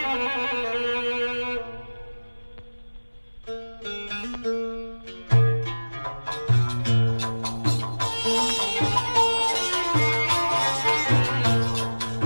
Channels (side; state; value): both; inverted; correlation -1.00